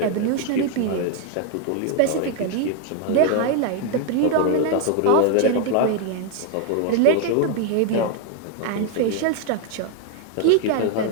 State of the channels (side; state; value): both; different; correlation 0.01